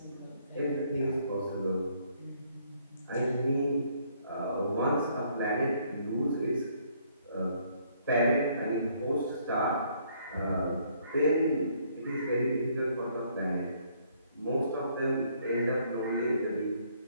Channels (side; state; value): both; inverted; correlation -0.66